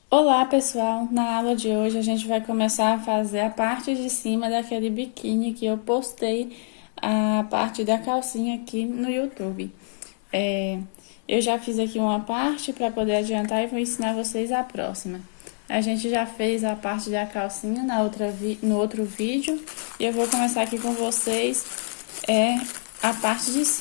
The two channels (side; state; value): right; silent; digital silence